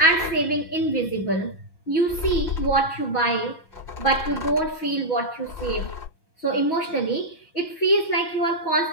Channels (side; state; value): right; late; 6.2 ms